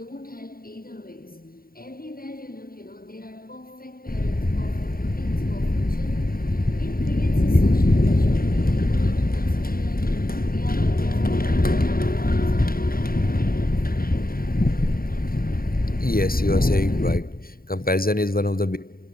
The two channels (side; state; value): right; late; 0.43 ms